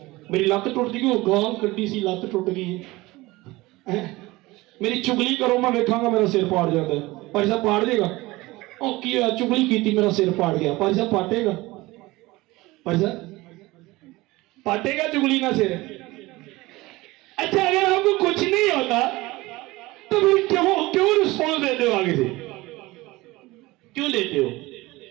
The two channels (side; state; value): left; quieter; 20.4 dB